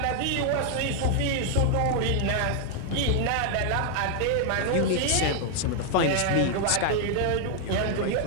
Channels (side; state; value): both; different; correlation 0.00